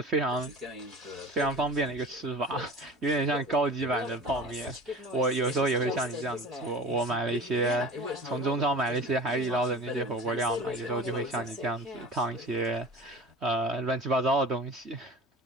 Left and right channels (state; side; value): normal; both; correlation 0.38